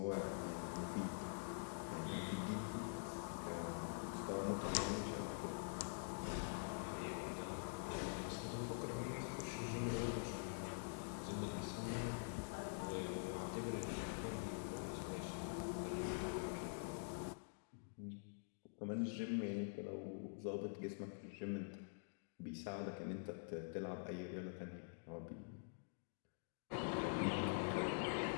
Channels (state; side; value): silent; right; digital silence